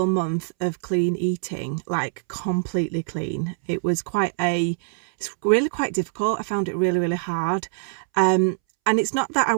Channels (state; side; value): silent; left; 63 dB below the other